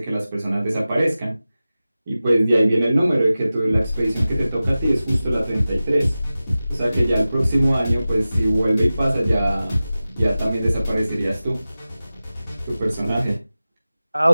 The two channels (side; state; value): both; inverted; correlation -0.96